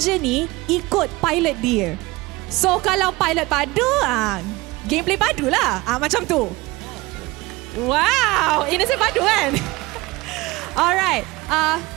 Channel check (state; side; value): quieter; left; 21.5 dB